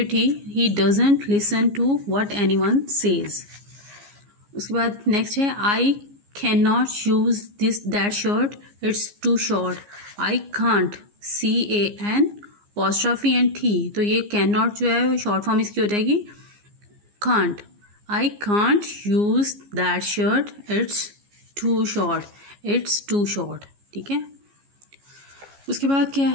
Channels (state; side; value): late; left; 15 ms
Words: T, he doesn't listen to what anyone says. उसके बाद नेक्स्ट है I cannot use that shirt, it's too short. I can't, CAN apostrophe and T, तो ये cannot जो है शॉर्ट फॉर्म इसकी हो जाएगी can't. I can't use that shirt, it's too short, ठीक है। उसके बाद क्या